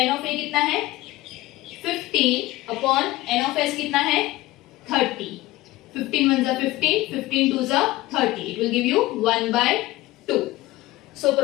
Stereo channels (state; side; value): quieter; right; 18.1 dB